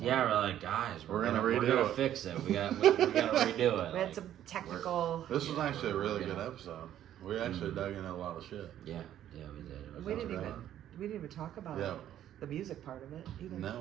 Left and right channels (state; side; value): quieter; left; 11.4 dB